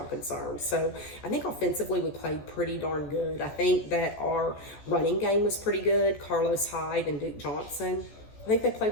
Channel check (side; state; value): right; late; 14 ms